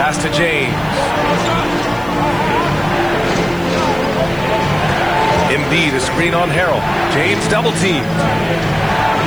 to James. Embiid, a screen on Harrell. James double teamed.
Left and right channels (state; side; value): noise; right; hiss, 24 dB below the sound